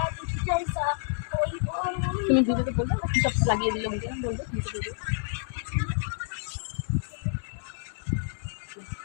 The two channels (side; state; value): right; silent; digital silence